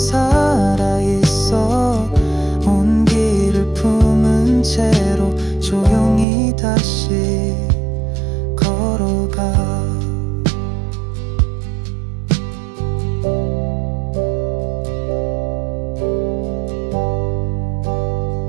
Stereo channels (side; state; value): left; drops out; at 6.2 s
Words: 온기를 품은 채로 조용히 다시 걸어가.